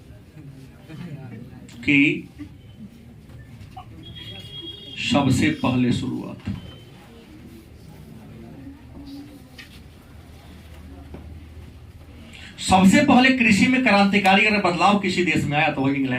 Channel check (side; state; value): both; identical; correlation 1.00